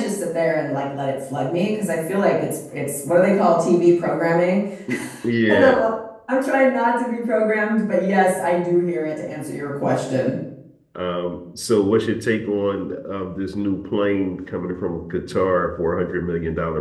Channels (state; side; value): identical; both; correlation 1.00